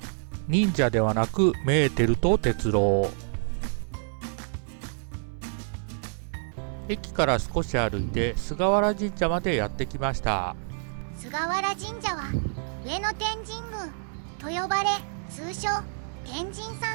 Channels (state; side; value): silent; left; digital silence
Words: 忍者ではなくメーテルと鉄郎。駅から少し歩いて菅原神社までやってきました。菅原神社は上野天神宮と呼ばれ、通称天神